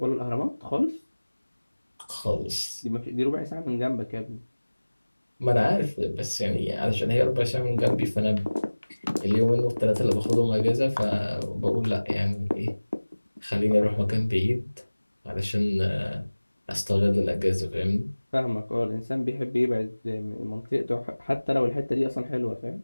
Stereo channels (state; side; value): inverted; both; correlation -1.00